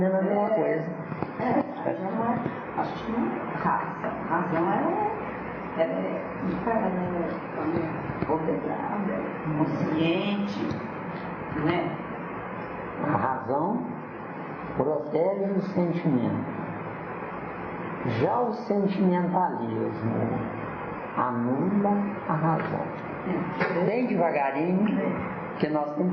a mesma coisa. Já não é. Acho que não é raça. Razão ela é ordenada, consciente, não é? A razão protege o sentimento. Já o sentimentalismo anula a razão. Bem devagarinho, que nós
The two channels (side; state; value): both; identical; correlation 1.00